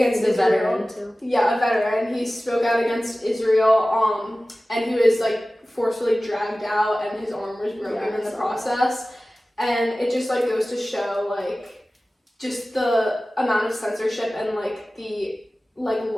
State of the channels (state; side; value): normal; both; correlation 0.97